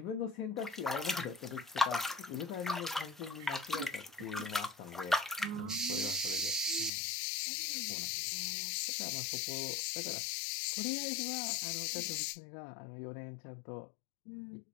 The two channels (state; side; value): drops out; right; at 6.9 s